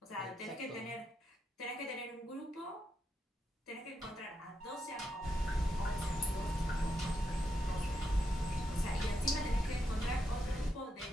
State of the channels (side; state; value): both; normal; correlation 0.82